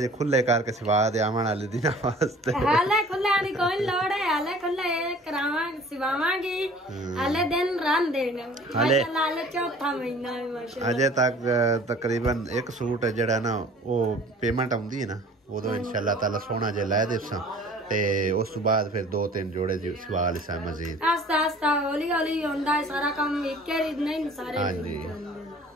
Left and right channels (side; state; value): both; normal; correlation 0.49